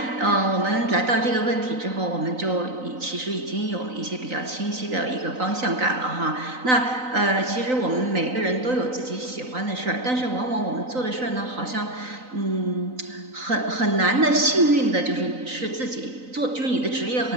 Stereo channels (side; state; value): left; late; 3.9 ms